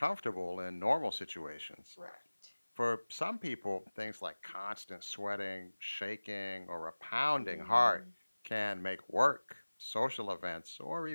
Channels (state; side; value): inverted; both; correlation -1.00